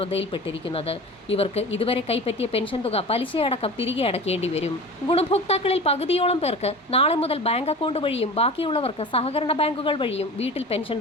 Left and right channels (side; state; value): both; normal; correlation 0.35